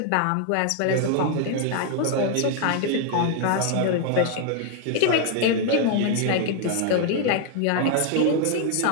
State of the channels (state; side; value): different; both; correlation 0.00